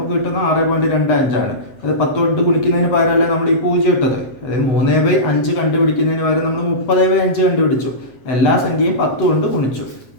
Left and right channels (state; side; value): late; right; 8.0 ms